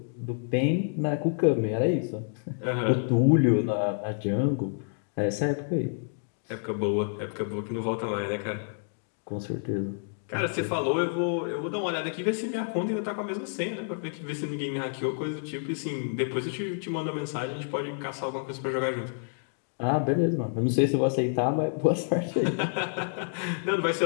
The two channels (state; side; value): silent; right; digital silence